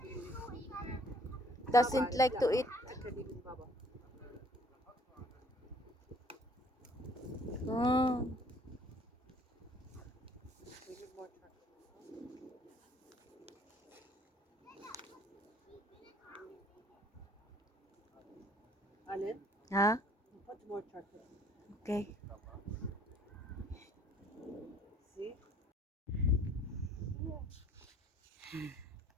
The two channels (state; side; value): normal; both; correlation 0.58